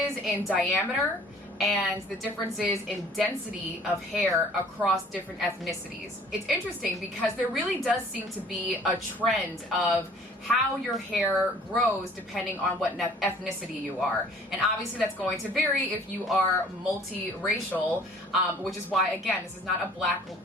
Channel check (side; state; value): both; normal; correlation 0.52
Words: in diameter and the differences in density of hair across different ethnicities. It's interesting because there really does seem to be a trend of how your hair grows depending on what ethnicity you are. And obviously that's going to vary if you are multiracial, which is why, again, this is not